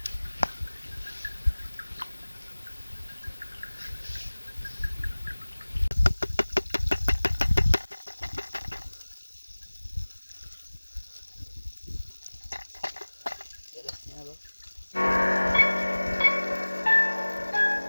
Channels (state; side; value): inverted; both; correlation -1.00